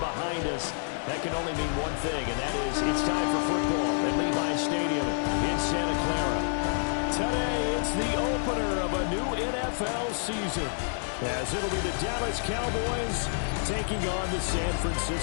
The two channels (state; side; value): silent; right; digital silence